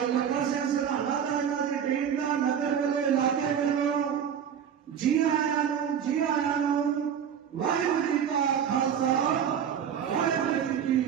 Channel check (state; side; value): quieter; left; 8.3 dB